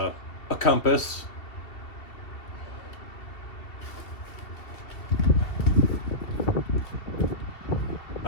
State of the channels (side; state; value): right; late; 2.7 ms